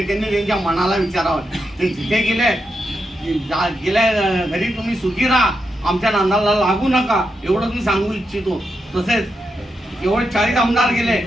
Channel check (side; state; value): both; normal; correlation 0.85